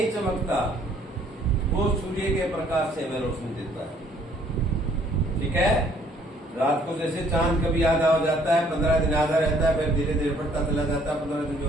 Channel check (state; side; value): normal; both; correlation 0.62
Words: चमकता, वो सूर्य के प्रकाश से हमें रोशनी देता है। ठीक है। रात को जैसे चांद कभी आधा हो जाता है, 15 दिन आधा रहता है, फिर धीरे धीरे बढ़ता चला जाता है, 15 दिन